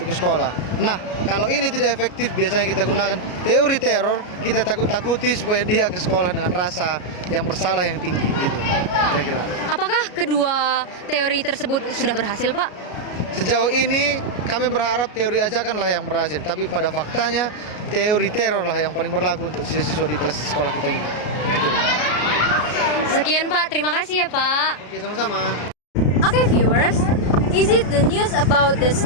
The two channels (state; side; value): late; right; 33 ms